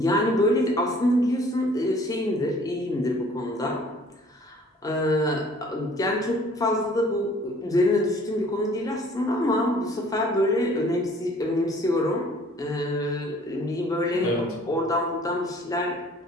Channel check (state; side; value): normal; both; correlation 0.54